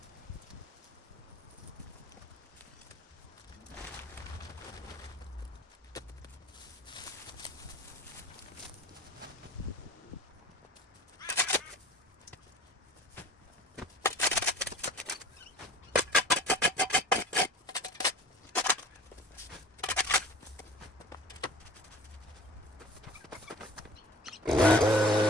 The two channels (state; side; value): normal; both; correlation 0.44